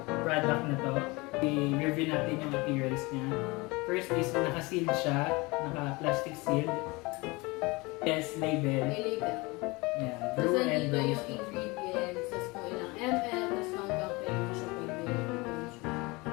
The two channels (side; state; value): right; quieter; 24.8 dB